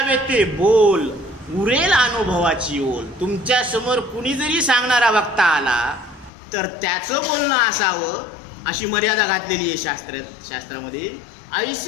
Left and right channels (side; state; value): right; drops out; at 6.3 s